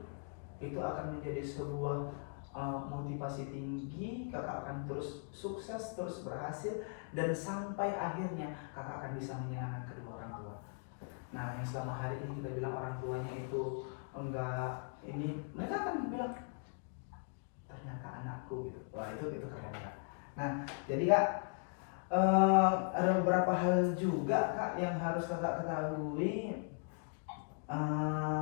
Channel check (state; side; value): silent; right; 52 dB below the other